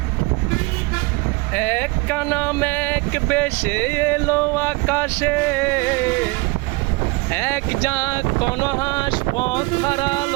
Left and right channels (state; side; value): quieter; left; 25.2 dB